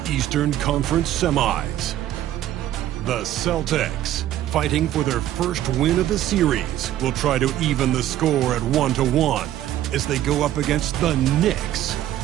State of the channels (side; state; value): left; quieter; 12.7 dB